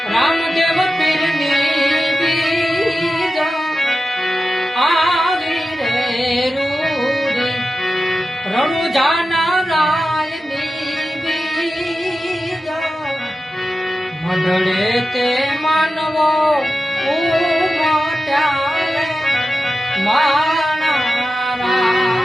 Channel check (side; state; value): both; normal; correlation 0.92